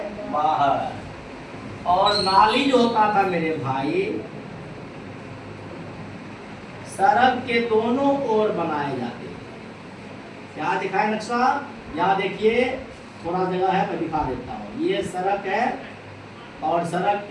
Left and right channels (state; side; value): identical; both; correlation 1.00